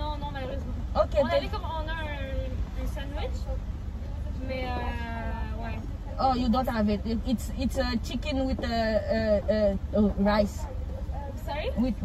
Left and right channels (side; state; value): both; identical; correlation 1.00